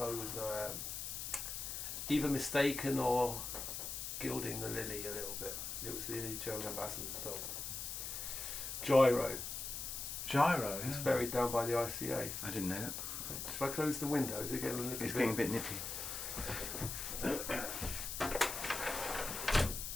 was either mistaken or gilding the lily a little bit. It was the German ambassador's dog. Gyro. Gyro. He's Yeah. buried down by the ICA. I didn't know that. Should I close the window? Is it getting a little It's bit? getting a bit nippy.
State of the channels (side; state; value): left; noise; hiss, 5 dB below the sound